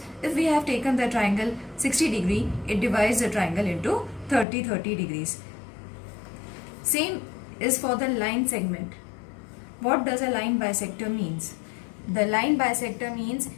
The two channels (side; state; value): right; drops out; at 4.5 s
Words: if we have taken the triangle 60 degree, it divides the triangle into 30-30 degrees. Same is for the line segment. What does a line bisector means? The line bisector means